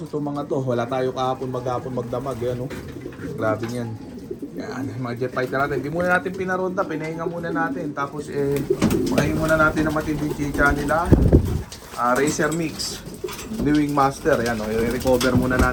itong mga to. Wala tayo kahapon, maghapon, magdamag. Yan o, grabe yan. Yan, mga jet fighter natin. Hindi muna natin pinaronda, pinahinga muna natin. Tapos pakahin muna natin ang matinding chicha nila. Racer Mix, New Wing Master. Yan, i-recover muna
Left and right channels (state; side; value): identical; both; correlation 1.00